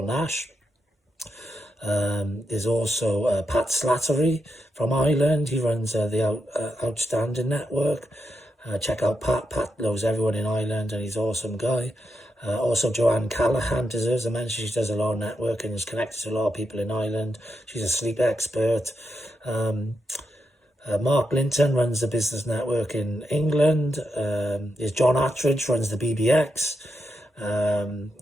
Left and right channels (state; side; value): normal; both; correlation 0.84